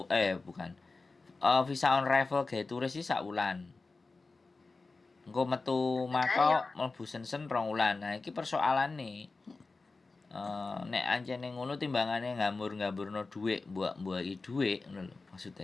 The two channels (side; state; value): right; quieter; 3.8 dB